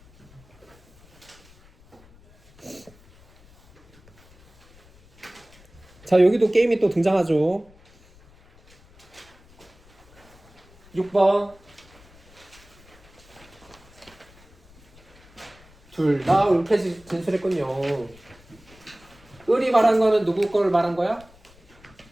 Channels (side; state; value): left; noise; rumble, 26 dB below the sound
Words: 자, 여기도 게임이 또 등장하죠. 6번. 둘 다 옳게 진술했군요. 을이 말한 거는 누구 걸 말한 거야?